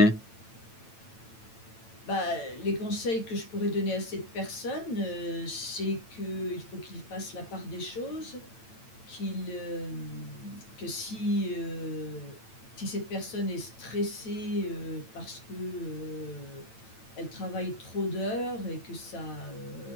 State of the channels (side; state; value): right; late; 9.0 ms